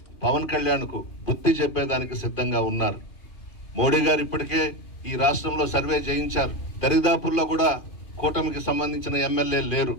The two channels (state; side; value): late; right; 2.5 ms